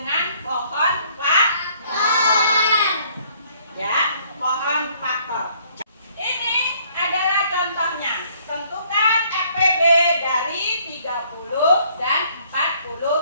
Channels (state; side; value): inverted; both; correlation -0.63